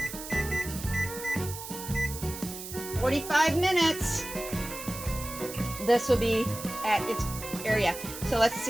In 45 minutes, this will be at its area. So let's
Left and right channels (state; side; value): noise; right; hiss, 10 dB below the sound